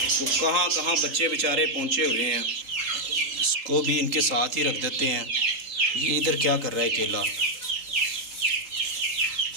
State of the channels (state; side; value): late; left; 3.8 ms